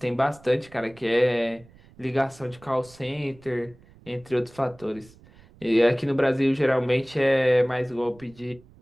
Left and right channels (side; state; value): right; noise; rumble, 25 dB below the sound